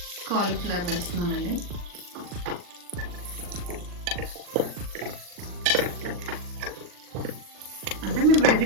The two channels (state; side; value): late; left; 40 ms